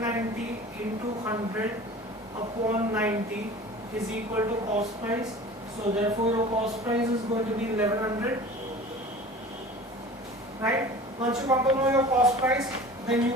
into 100 upon 90 is equal to cost price. So therefore your cost price is going to be 1100. Right? Once you come to know your cost price, then you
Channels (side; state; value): both; normal; correlation 0.40